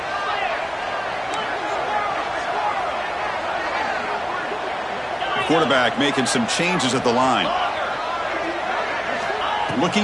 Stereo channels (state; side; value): identical; both; correlation 1.00